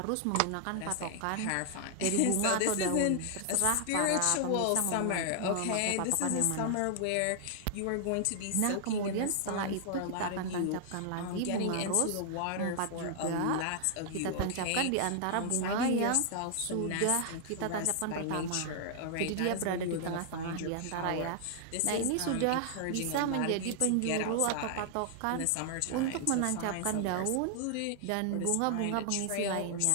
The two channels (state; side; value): different; both; correlation 0.00